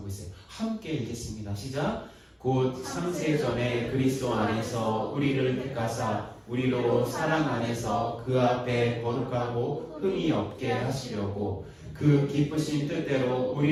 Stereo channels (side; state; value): both; identical; correlation 1.00